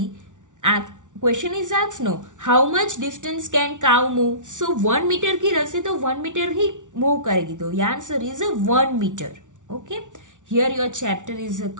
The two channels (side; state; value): left; late; 0.87 ms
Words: question is asked no how much distance can cow move. So 1 metre की रस्सी तो 1 मीटर ही मूव करेगी, तो ये answer is 1 metre. Okay. Here your chapter is